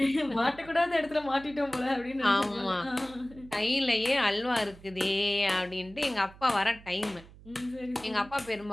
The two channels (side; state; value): right; noise; hum, 21 dB below the sound